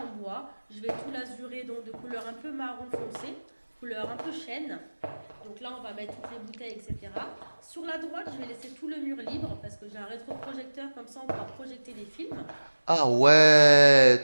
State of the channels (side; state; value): both; inverted; correlation -1.00